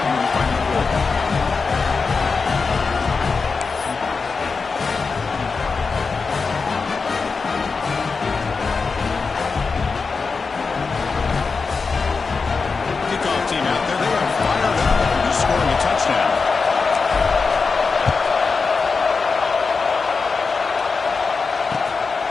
the final quarter. Kickoff team out there. They are fired up. He's scoring a touchdown.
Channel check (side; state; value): right; quieter; 4.7 dB